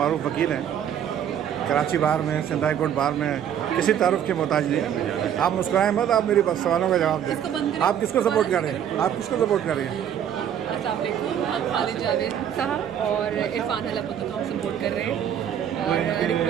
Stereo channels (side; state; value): left; quieter; 9.5 dB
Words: वकील हैं, कराची बार में, सिंध हाई कोर्ट बार में, किसी तारुफ के मोहताज नहीं। आप मुस्कुराएं मत, आप मेरी सवालों का जवाब दें। आप किसको सपोर्ट कर रहे हैं? आप किसको सपोर्ट कर रहे हैं? अस्सलाम वालेकुम, हम खालिद जावेद साहब और इरफान हलापुत्ता को हम सपोर्ट कर रहे हैं, और